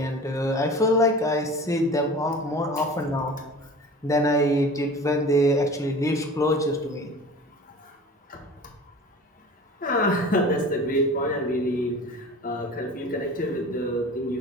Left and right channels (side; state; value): both; normal; correlation 0.40